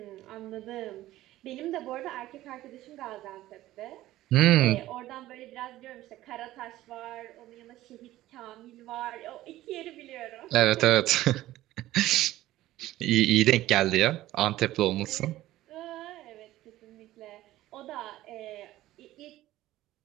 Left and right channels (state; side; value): quieter; left; 15.4 dB